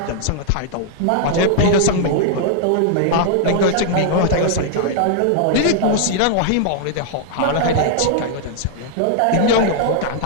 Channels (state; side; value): different; both; correlation -0.01